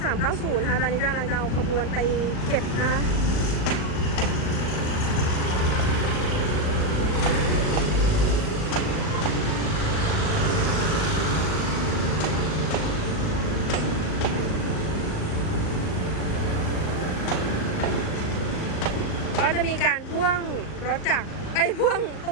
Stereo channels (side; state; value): right; late; 38 ms